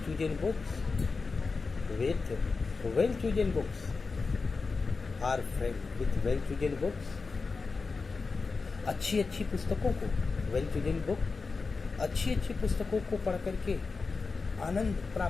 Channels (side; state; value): right; quieter; 4.3 dB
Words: books, with well chosen books are friend, with well chosen books, अच्छी अच्छी पुस्तकों को, वेल चूजन बुक, अच्छी अच्छी पुस्तकों को पढ़ करके आनंद